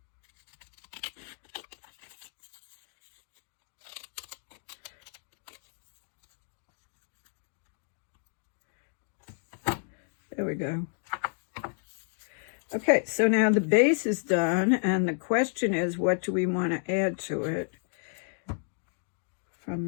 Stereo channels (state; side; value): silent; right; 57 dB below the other